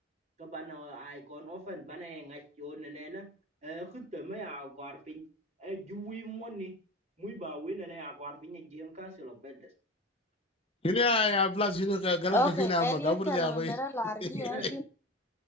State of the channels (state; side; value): normal; both; correlation 0.31